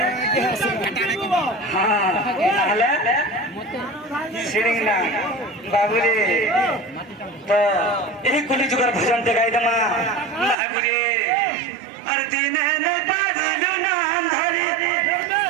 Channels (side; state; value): left; drops out; at 10.6 s